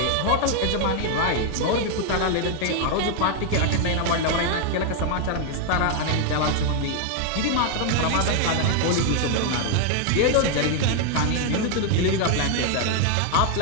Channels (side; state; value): both; different; correlation 0.00